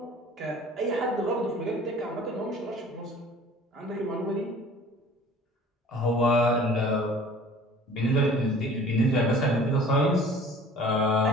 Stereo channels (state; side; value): normal; both; correlation 0.47